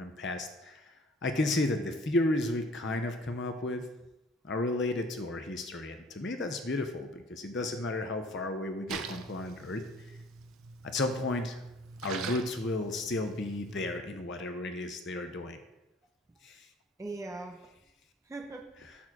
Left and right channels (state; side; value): normal; both; correlation 0.52